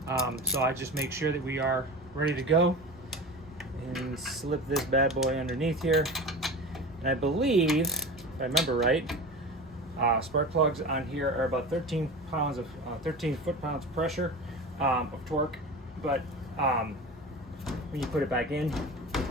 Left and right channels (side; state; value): both; normal; correlation 0.31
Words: So I just make sure that we are ready to go and slip this bad boy underneath here. And I believe, if I remember right, spark plugs on here are about 13 foot-pounds of pressure of torque. But when you put it back in,